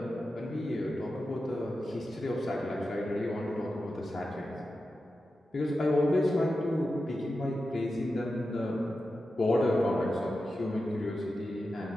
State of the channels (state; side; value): normal; both; correlation 0.91